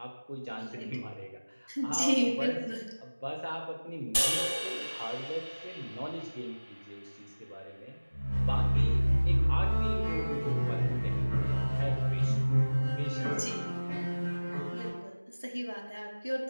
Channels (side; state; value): both; inverted; correlation -1.00